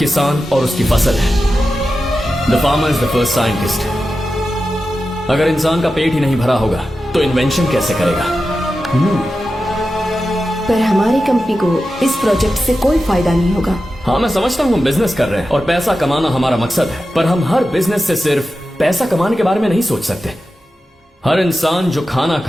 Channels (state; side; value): normal; both; correlation 0.92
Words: और उसकी फसल है। The farmer is the first scientist. अगर इंसान का पेट ही नहीं भरा होगा तो इन्वेंशन कैसे करेगा? पर हमारी कंपनी को इस प्रोजेक्ट से कोई फायदा नहीं होगा। हाँ, मैं समझता हूँ हम बिजनेस कर रहे हैं और पैसा कमाना हमारा मकसद है, पर हम हर बिजनेस से सिर्फ पैसा कमाने के बारे में नहीं सोच सकते। हर इंसान जो खाना